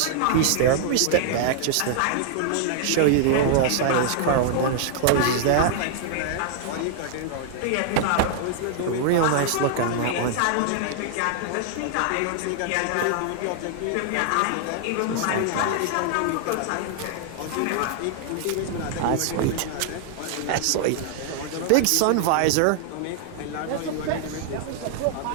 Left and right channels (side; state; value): both; different; correlation 0.00